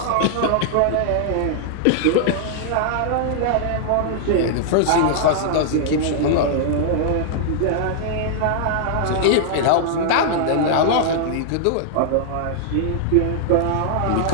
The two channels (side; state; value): both; different; correlation -0.01